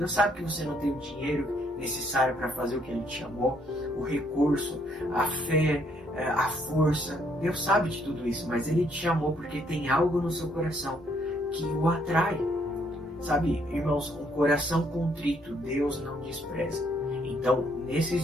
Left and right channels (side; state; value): both; normal; correlation 0.69